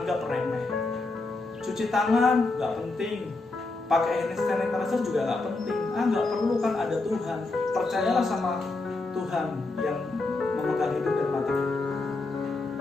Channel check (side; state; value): right; quieter; 3.3 dB